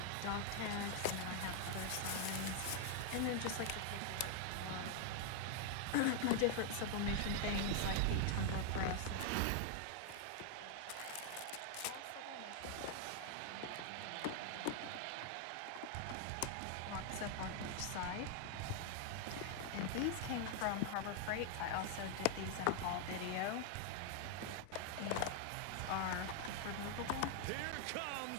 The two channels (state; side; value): different; both; correlation 0.00